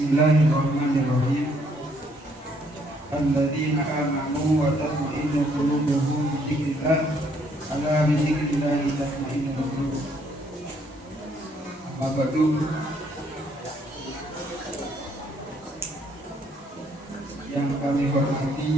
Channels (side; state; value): both; normal; correlation 0.68